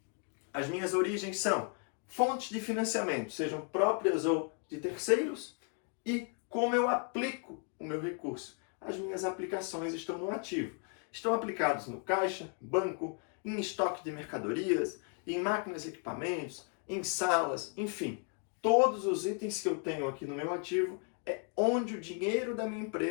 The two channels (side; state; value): right; quieter; 39.5 dB